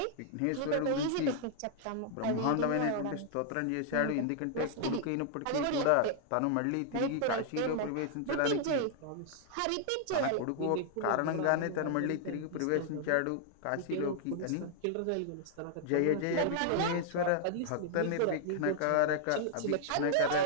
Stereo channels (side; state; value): both; different; correlation -0.01